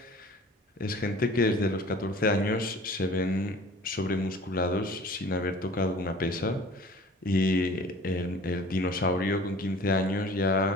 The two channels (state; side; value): normal; both; correlation 0.46